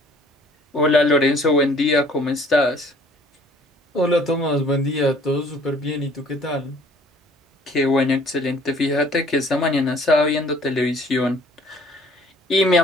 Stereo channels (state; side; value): normal; both; correlation 0.55